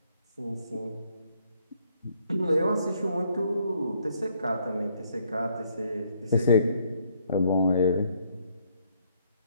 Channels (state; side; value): inverted; both; correlation -0.69